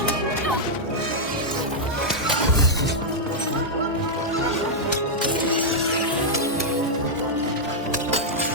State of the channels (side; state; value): both; normal; correlation -0.05